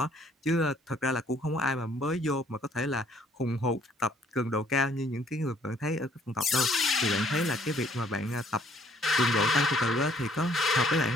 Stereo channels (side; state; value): both; normal; correlation 0.62